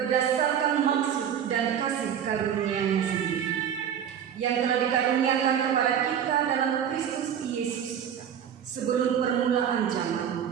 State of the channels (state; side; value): quieter; left; 8.8 dB